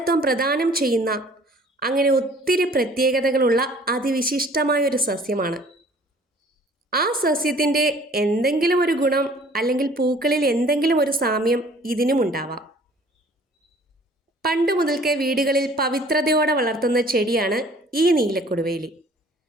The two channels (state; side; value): normal; both; correlation 0.53